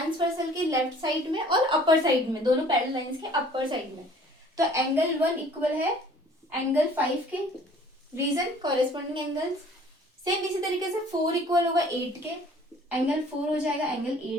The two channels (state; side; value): normal; both; correlation 0.53